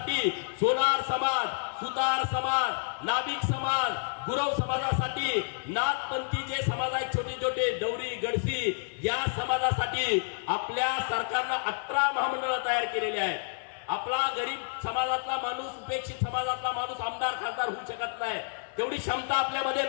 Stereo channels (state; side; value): silent; right; 56 dB below the other